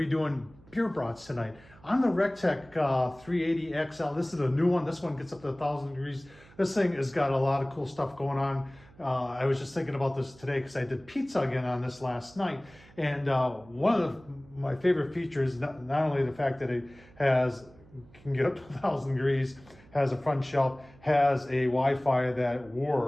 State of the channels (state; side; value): noise; right; hum, 25 dB below the sound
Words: doing beer brats tonight on the Recteq 380 XL. This is a new one. This one gets up to 1,000 degrees. This thing has got a lot of cool stuff going on. I was just thinking about this today because I did pizza again on this last night, and one of my favorite features, not only the fact that it can get up to 1,000 degrees, has a front shelf, has a Wi-Fi that